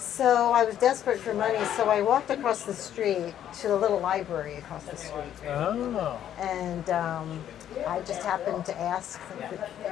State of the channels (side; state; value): right; quieter; 10.6 dB